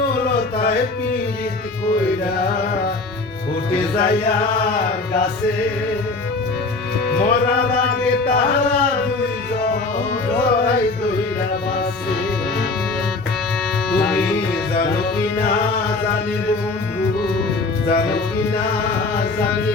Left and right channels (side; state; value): right; quieter; 3.6 dB